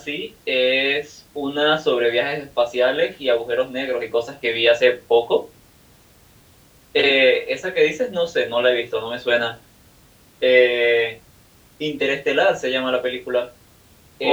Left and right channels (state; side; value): identical; both; correlation 1.00